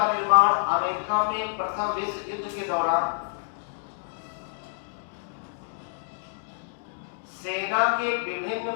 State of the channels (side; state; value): right; silent; digital silence